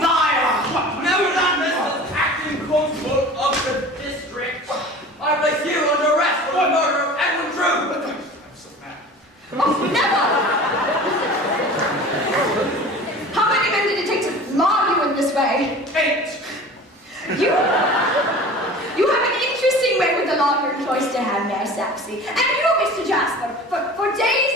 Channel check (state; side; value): normal; both; correlation 0.40